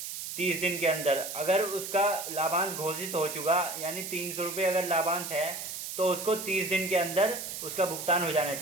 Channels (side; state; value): right; noise; hiss, 7 dB below the sound